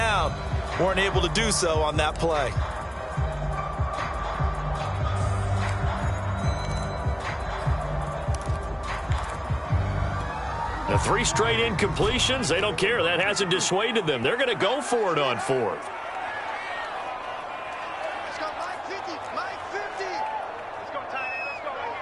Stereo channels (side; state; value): both; identical; correlation 1.00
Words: Weren't able to do so on that play. The 3 straight incompletions, they don't care. That hasn't dissuaded them. They're going to go for it on 4th. Let's go, Mike 50. Mike 50. Let's go, Ty. Let's go right